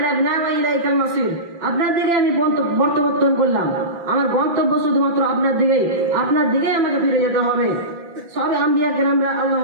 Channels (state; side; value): late; left; 5.9 ms